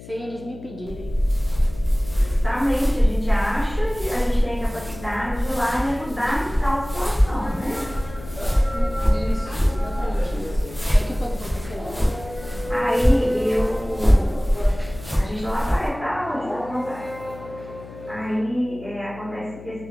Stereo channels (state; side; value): noise; left; hum, 16 dB below the sound